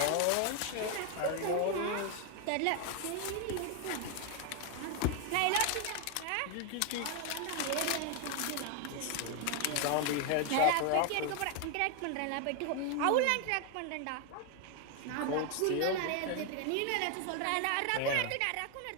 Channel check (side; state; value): both; different; correlation 0.01